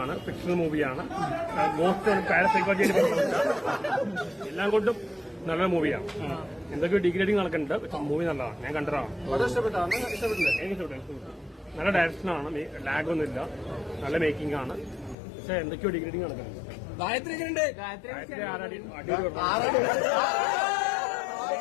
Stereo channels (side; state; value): right; drops out; at 15.2 s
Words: ആണ്. ഫിക്ഷണൽ മൂവിയാണ്. മോസ്റ്റ് പാരസൈക്കോളജിയിൽ എല്ലാം കൊണ്ടും നല്ലൊരു മൂവിയാണ്. എന്തൊക്കെയോ ഡിഗ്രേഡിങ് നടക്കുന്നുണ്ട്. പക്ഷെ മൂവി നല്ലതാണ്. ഞാൻ കണ്ടതാണ്. എനിക്ക് നല്ല ഡയറക്ഷനാണ്. ലാഗൊന്നുമില്ല. നല്ല മേക്കിംഗ് ആണ്. പക്ഷെ എന്തൊക്കെയോ ഡിഗ്രേഡിങ് നടക്കുന്നുണ്ട്.